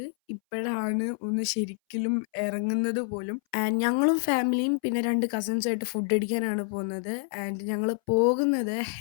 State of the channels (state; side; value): silent; right; 60 dB below the other